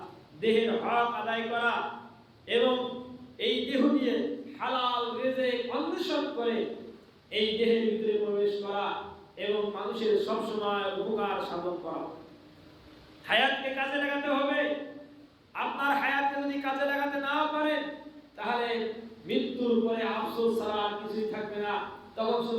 দেহের হক আদায় করা এবং এই দেহ দিয়ে হালাল রিজিক অন্বেষণ করে এই দেহের ভিতরে প্রবেশ করা এবং মানুষের সব সময় উপকার সাধন করা। হায়াতকে কাজে লাগাতে হবে। আপনার হায়াতকে যদি কাজে লাগাতে না পারেন, তাহলে মৃত্যুর পরে আফসোস ছাড়া আর কিছুই থাকবে না। তখন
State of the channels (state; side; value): identical; both; correlation 1.00